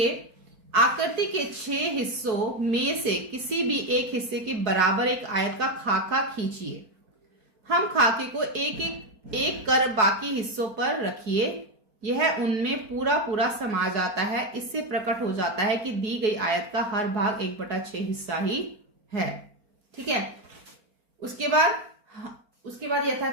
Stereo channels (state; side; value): late; left; 4.7 ms